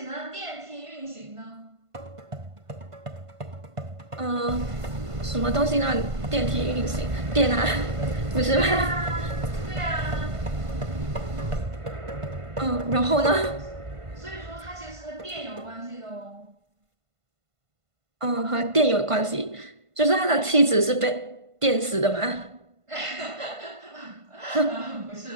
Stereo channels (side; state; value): left; late; 1.5 ms